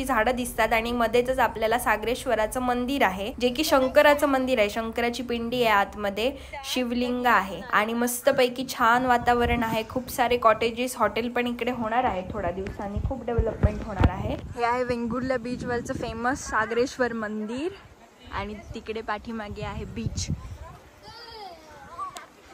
झाडं दिसतात. आणि मध्येच आपल्याला सागरेश्वराचं मंदिर आहे, जे की शंकराचं मंदिर आहे. शंकराची पिंडी आहे, आतमध्ये शिवलिंग आहे. आणि मस्तपैकी छान वातावरण आहे. खूप सारे कॉटेजेस, हॉटेल पण इकडे होणार आहे. थोड्या दिवसांनी खूप डेव्हलपमेंट होणार आहे. हे आहे वेंगुर्ला बीचवरचं फेमस सागरेश्वर मंदिर. आणि तिकडे पाठीमागे आहे बीच.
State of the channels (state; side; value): identical; both; correlation 1.00